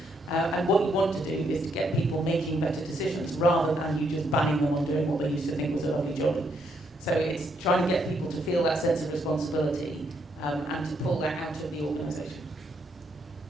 And what you want to do is to get people making better decisions rather than you just banning them on doing what they used to think was a lovely jolly. So it's trying to get people to feel that sense of responsibility and to pull that out of the organisation?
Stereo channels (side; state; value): both; normal; correlation 0.75